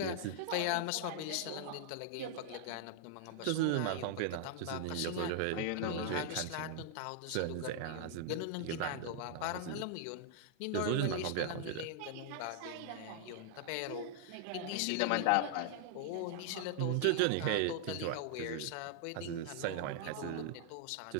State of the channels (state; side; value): different; both; correlation -0.01